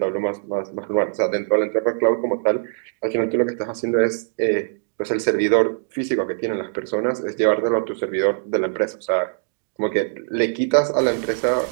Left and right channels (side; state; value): left; silent; digital silence